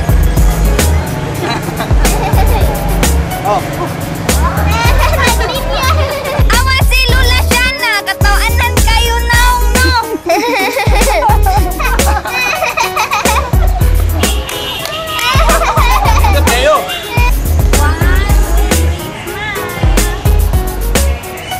Oh. Awas si Lula Shana, katawanan kayo naong no. Kayo.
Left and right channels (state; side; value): identical; both; correlation 1.00